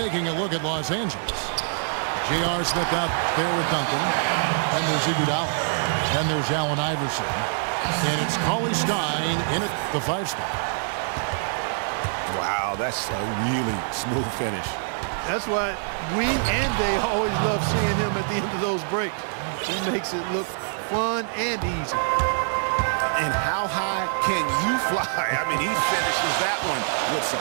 a look at Los Angeles. J.R. Smith out there with Duncan. And there's Iguodala. Then there's Allen Iverson. And it's Cauley Stein in at the 5 spot. Wow, that's a really smooth finish. That's why we and they always love seeing him at the end of those breaks. He makes it look fun and easy. And how high can you fly? I mean, he finishes that one with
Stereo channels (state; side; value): silent; left; 58 dB below the other